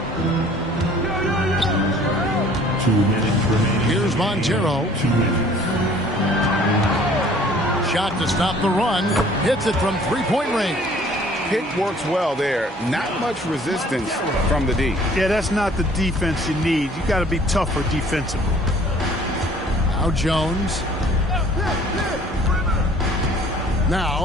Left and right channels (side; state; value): both; normal; correlation 0.54